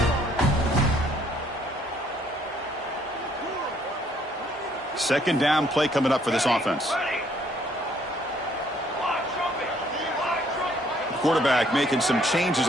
Second down play coming up for this offense. Quarterback making some changes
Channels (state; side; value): normal; both; correlation 0.65